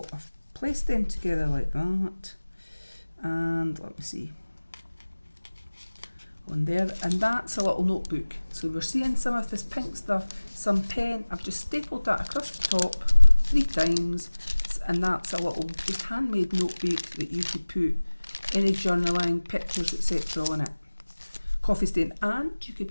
I've placed them together like that, and let me see on there, and that's a little notebook. So we're seeing some of this pink stuff, some pen. I've just stapled that across the top 3 times, and that's a little just handmade notebook that you could put any journaling, pictures, etc. on it. Coffee stain, and you could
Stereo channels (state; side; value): inverted; both; correlation -1.00